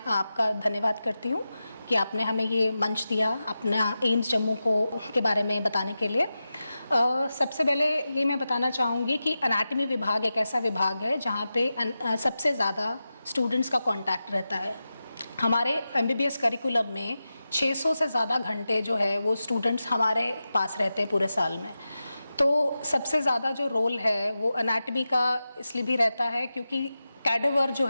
धन्यवाद करती हूँ कि आपने हमें ये मंच दिया अपना एम्स जम्मू के बारे में बताने के लिए। सबसे पहले ये मैं बताना चाहूँगी कि एनाटॉमी विभाग एक ऐसा विभाग है जहाँ पे सबसे ज़्यादा स्टूडेंट्स का कांटेक्ट रहता है। हमारे एमबीबीएस करिकुलम में 600 से ज़्यादा घंटे जो है वो स्टूडेंट्स हमारे पास रहते हैं पूरे साल में। तो सबसे ज़्यादा जो रोल है वो एनाटॉमी का इसलिए भी रहता है क्योंकि कैडेवर जो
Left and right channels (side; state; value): both; inverted; correlation -0.92